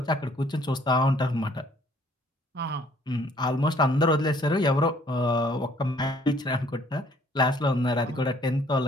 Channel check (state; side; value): normal; both; correlation 0.60